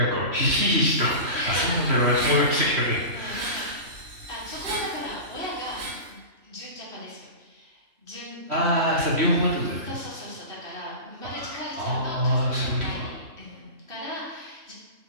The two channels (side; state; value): left; late; 3.1 ms